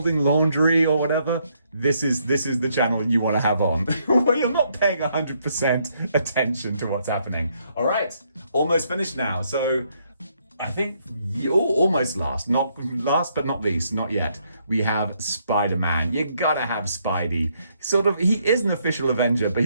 laundry or whatever, this is the channel you want to have on, where you're not paying 100% attention to what's happening. All right, almost finished now. So I think almost last, not last but not least, not yet. We have Spider-Man. You gotta have Spidey. He is an official Avenger, but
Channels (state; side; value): inverted; both; correlation -0.73